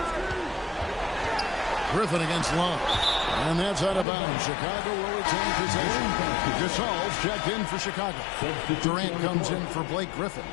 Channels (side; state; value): right; drops out; at 4.0 s